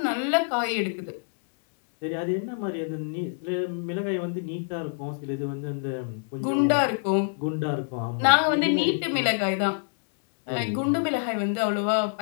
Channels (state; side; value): silent; right; digital silence